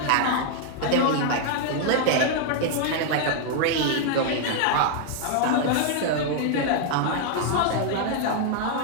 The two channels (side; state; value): both; different; correlation 0.00